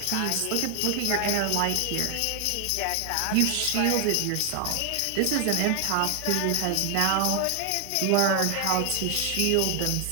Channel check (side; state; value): both; different; correlation 0.00